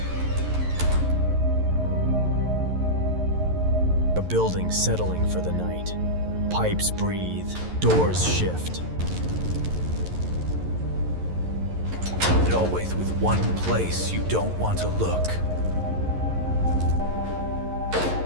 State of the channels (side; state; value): left; late; 11 ms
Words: A building settling for the night. Pipes breathe, doors shift. And always with one place you don't want to look.